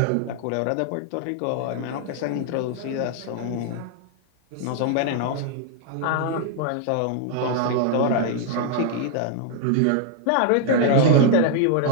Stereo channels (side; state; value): both; different; correlation -0.01